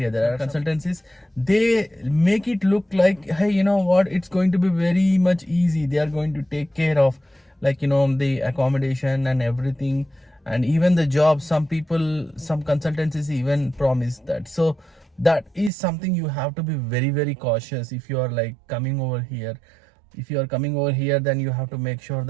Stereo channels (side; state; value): left; drops out; at 15.7 s